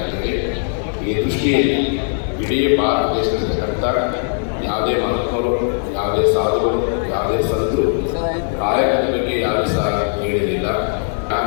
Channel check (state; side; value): silent; right; digital silence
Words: ಈ ದೃಷ್ಟಿಯಲ್ಲಿ ಇಡೀ ಭಾರತ ದೇಶದಲ್ಲಿರ್ತಕ್ಕಂಥ ಯಾವುದೇ ಮಹಾತ್ಮರು, ಯಾವುದೇ ಸಾಧುಗಳು, ಯಾವುದೇ ಸಂತರು ಕಾಯಕದ ಬಗ್ಗೆ ಯಾವುದೇ ಸಹ ಹೇಳಿರಲಿಲ್ಲ.